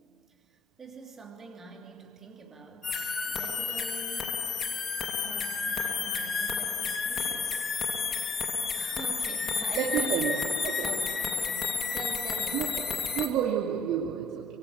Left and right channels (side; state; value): both; normal; correlation 0.61